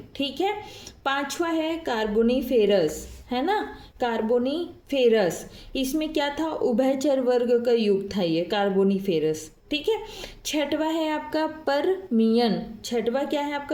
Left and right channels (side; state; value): both; identical; correlation 1.00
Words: ठीक है, 5वां है कार्बोनीफेरस, है ना, कार्बोनीफेरस। इसमें क्या था, उभयचर वर्ग का युग था ये कार्बोनीफेरस। ठीक है, 6वां है आपका परमियन। 6वां क्या है